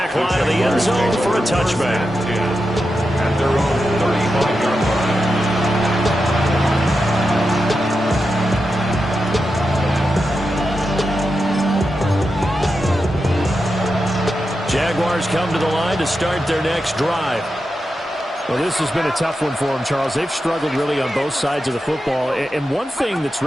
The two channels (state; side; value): normal; both; correlation 0.89